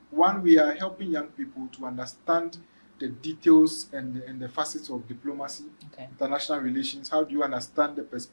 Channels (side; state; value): both; inverted; correlation -1.00